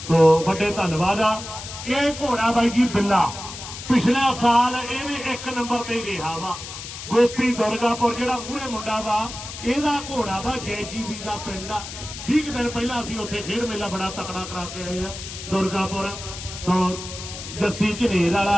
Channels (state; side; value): noise; left; hiss, 10 dB below the sound